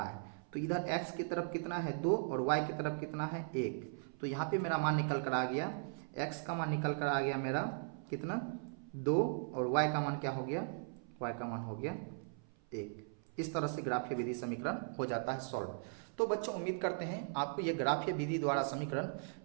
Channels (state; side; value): silent; left; 52 dB below the other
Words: है तो इधर x की तरफ कितना है 2 और y की तरफ कितना है 1। तो यहाँ पे मेरा मान निकल कर आ गया, x का मान निकल कर आ गया मेरा कितना 2 और y का मान क्या हो गया, y का मान हो गया 1। इस तरह से ग्राफीय विधि समीकरण हो जाता है सॉल्व। तो बच्चों उम्मीद करते हैं आपको ये ग्राफीय विधि द्वारा समीकरण